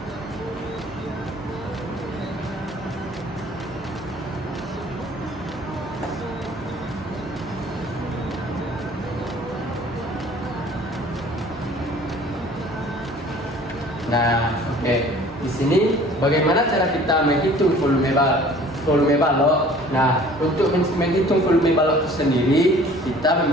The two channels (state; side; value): normal; both; correlation 0.50